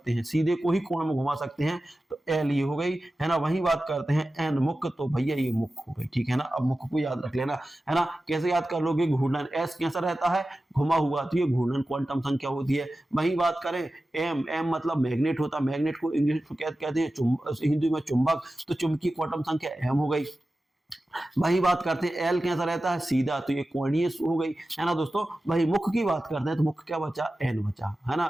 हैं, सीधे को ही कोण में घुमा सकते हैं, तो एल ये हो गई, है ना। वहीं बात करते हैं एन, मुख्य, तो भैया ये मुख्य हो गई, ठीक है ना। अब मुख्य को याद रख लेना, है ना। कैसे याद कर लोगे, घूर्णन, एस कैसा रहता है, घुमा हुआ, तो ये घूर्णन क्वांटम संख्या होती है। वहीं बात करें एम, एम मतलब मैग्नेट होता है, मैग्नेट को इंग्लिश में कहते हैं हिंदी में चुंबक, तो चुंबकीय क्वांटम संख्या एम हो गई। वही बात करते हैं एल कैसा रहता है, सीधा, तो ये कोणीय हो गई, है ना दोस्तों। वही मुख्य की बात करते हैं तो मुख्य क्या बचा, एन बचा, है ना।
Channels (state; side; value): normal; both; correlation 0.94